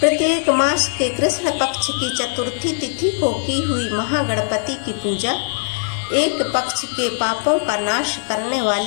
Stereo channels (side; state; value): right; silent; 57 dB below the other